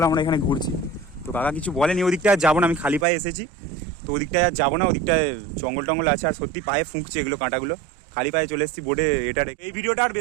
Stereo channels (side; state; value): left; drops out; at 3.1 s